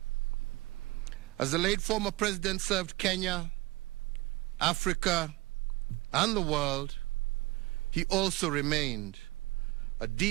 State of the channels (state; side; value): quieter; left; 21.2 dB